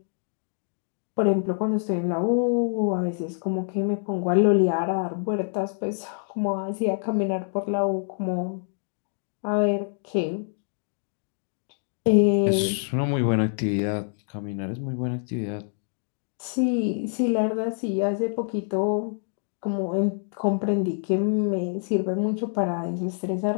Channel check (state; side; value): silent; right; 55 dB below the other